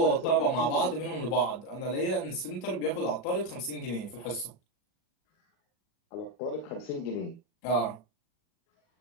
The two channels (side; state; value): right; late; 38 ms